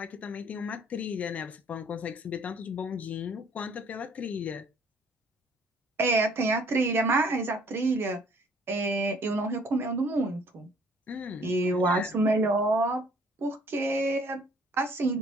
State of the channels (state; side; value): normal; both; correlation 0.59